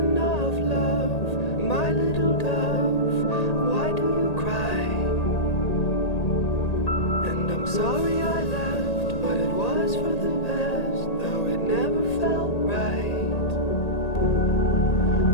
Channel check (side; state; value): right; late; 1.8 ms